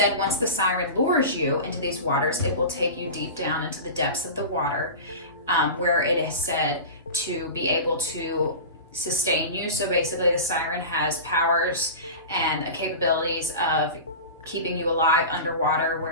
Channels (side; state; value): both; inverted; correlation -0.30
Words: once the siren lures you into these waters, it will take you deep down into the depths of the water, where it is said to be able to sustain you. So basically the siren has powers and capabilities of keeping you alive underwater,